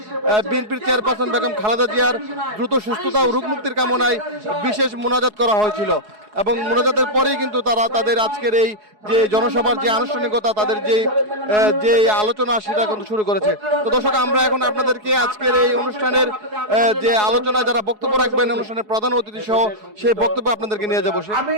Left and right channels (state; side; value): late; left; 4.7 ms